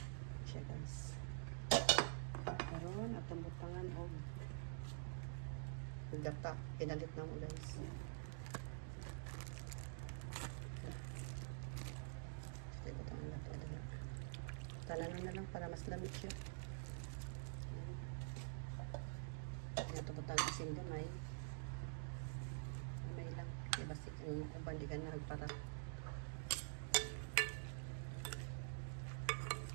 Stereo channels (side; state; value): left; silent; digital silence